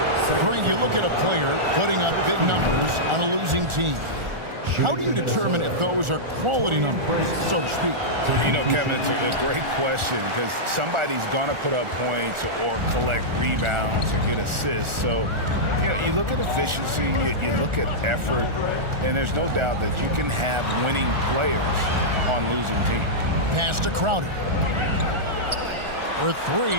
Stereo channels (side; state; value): left; late; 1.4 ms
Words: Frank, you look at a player putting up big numbers on a losing team. How do you determine if those are quality numbers, so to speak? You know, Kevin, it's a great question because somebody's going to put up points or collect rebounds or get assists. So, you know, you look at efficiency, you look at effort, and there's no doubt that you can have winning players on losing teams. Pass to Crowder. For